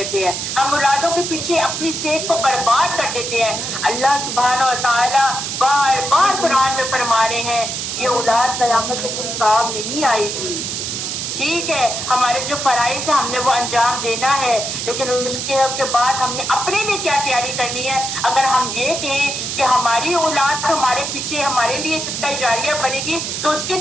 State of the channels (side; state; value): right; noise; hiss, 4 dB below the sound